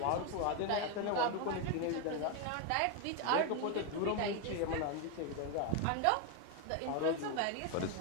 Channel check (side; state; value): both; different; correlation 0.01